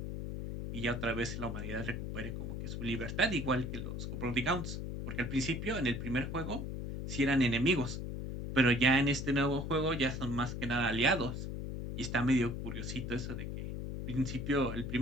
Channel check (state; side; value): noise; left; hum, 5 dB below the sound